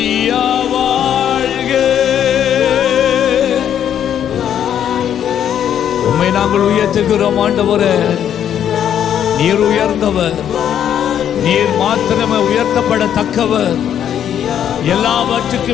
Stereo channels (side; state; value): right; quieter; 9.6 dB